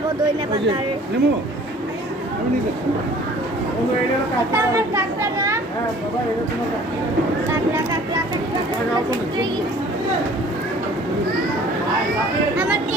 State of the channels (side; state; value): both; normal; correlation 0.51